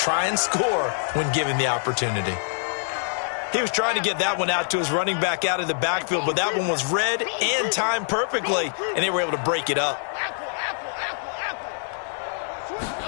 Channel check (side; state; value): right; silent; digital silence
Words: and score when given the opportunity. He was trying to get that one out to his running back out of the backfield, but that one was read and timed perfectly, and they were able to break it up.